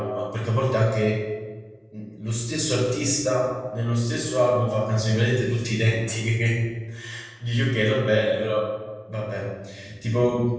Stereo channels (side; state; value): both; identical; correlation 1.00